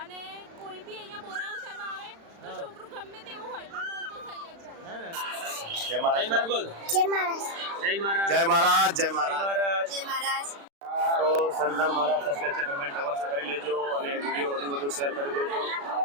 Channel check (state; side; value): late; left; 36 ms